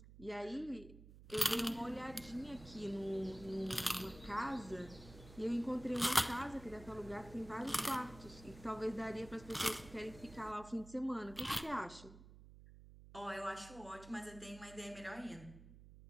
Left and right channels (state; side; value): noise; right; hum, 17 dB below the sound